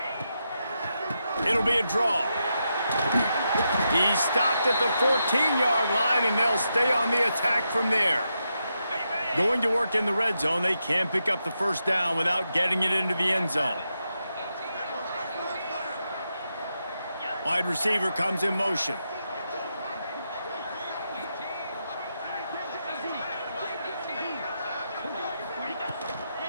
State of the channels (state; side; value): inverted; both; correlation -0.85